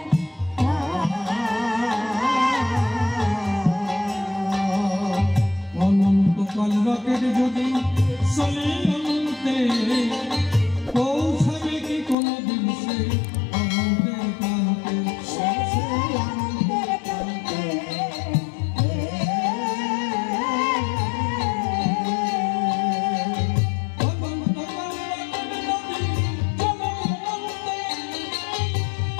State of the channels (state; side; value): drops out; right; at 12.2 s